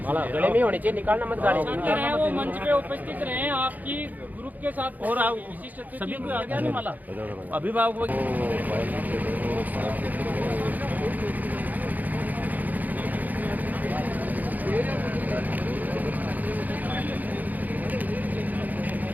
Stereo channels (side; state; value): left; late; 0.081 ms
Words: माला गले में होनी चाहिए, निकालना मत गाड़ी। छात्र हैं वो मंच पे उपस्थित रहे आपकी ग्रुप के साथ, और आप विशिष्ट अतिथि सभी को आ गया नहीं माला अभिभावक